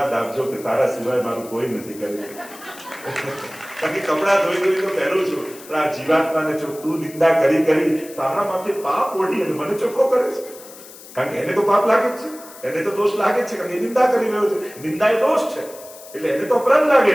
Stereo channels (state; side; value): noise; left; hiss, 18 dB below the sound